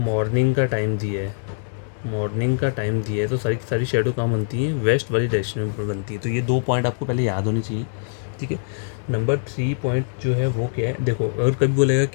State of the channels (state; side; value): silent; right; digital silence